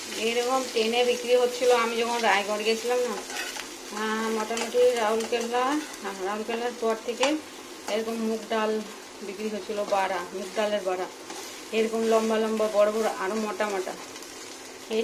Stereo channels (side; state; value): both; identical; correlation 1.00